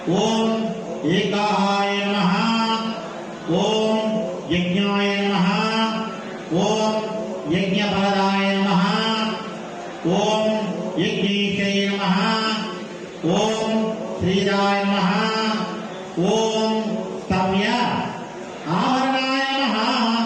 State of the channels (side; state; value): both; identical; correlation 1.00